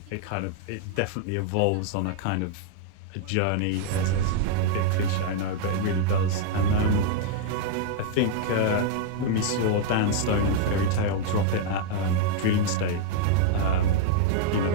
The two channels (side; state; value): both; different; correlation -0.01